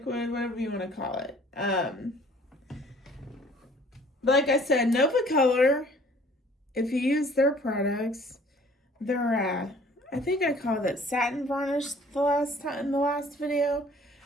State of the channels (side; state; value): both; normal; correlation 0.53